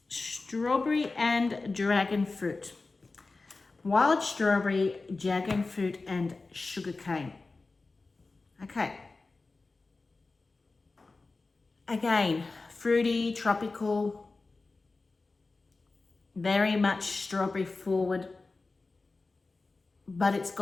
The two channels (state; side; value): quieter; right; 3.7 dB